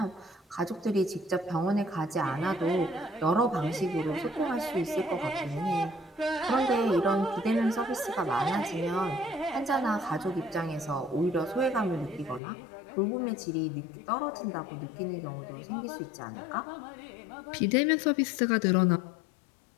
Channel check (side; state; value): right; drops out; at 12.4 s